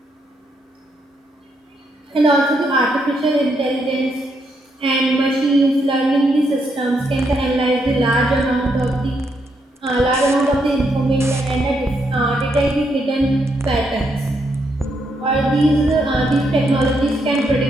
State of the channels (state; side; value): normal; both; correlation 0.77